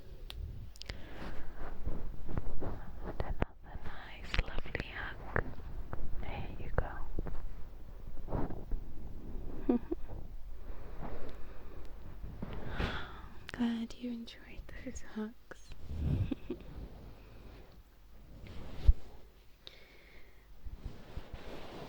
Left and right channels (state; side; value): identical; both; correlation 1.00